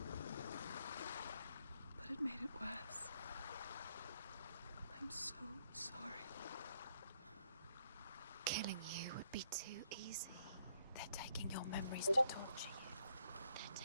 But it made it worse. I'm so sorry. Killing you would be too easy. They're taking your memories to torture you. They're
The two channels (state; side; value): inverted; both; correlation -0.73